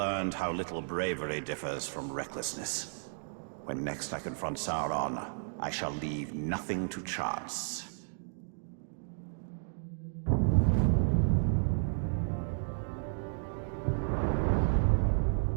how little bravery differs from recklessness. When next I confront Sauron, I shall leave nothing to chance.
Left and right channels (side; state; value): left; silent; digital silence